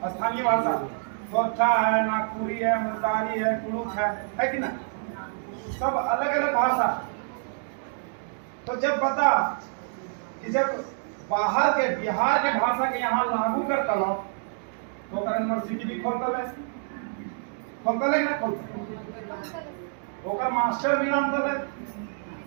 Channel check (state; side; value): silent; left; digital silence